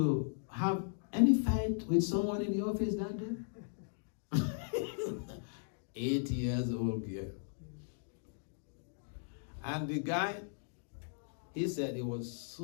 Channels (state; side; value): silent; right; digital silence